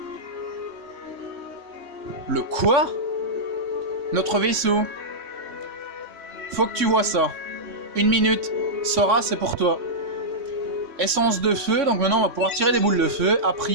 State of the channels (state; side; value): late; left; 3.6 ms